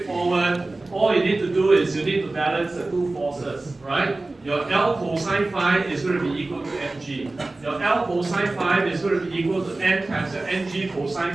All you need to do is you need to balance the two forces, right? Your L cosine phi is going to be equal to mg. Your L cosine phi is going to be equal to n times your ng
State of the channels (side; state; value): left; quieter; 3.1 dB